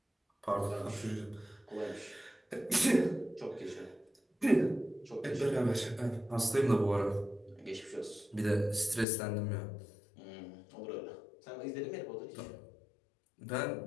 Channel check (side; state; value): right; drops out; at 9.1 s